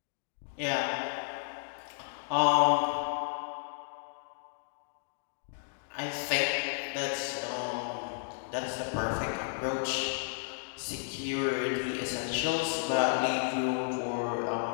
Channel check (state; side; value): silent; right; digital silence